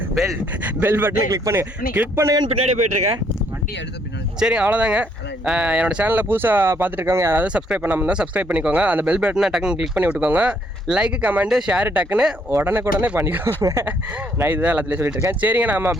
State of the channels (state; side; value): normal; both; correlation 0.69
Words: பெல் பட்டனை கிளிக் பண்ணுங்க. கிளிக் பண்ணுங்கன்னு பின்னாடி போயிட்டு இருக்கேன். வண்டி எடுத்து பின்னாடி. சரி அவ்வளோதாங்க. என்னோட சேனலில் புதுசாக பார்த்துட்டு இருக்கவங்க யாராவது சப்ஸ்கிரைப் பண்ணாமல் இருந்தால் சப்ஸ்கிரைப் பண்ணிக்கோங்க. அந்த பெல் பட்டனை டக்குன்னு கிளிக் பண்ணி விட்டுக்கோங்க. லைக் கமெண்ட்டு ஷேர் டக்குன்னு உடனே பண்ணிக்கோங்க. நான் இதுதான் எல்லாத்துலேயும் சொல்லிட்டு இருக்கேன். சரிங்க நம்ம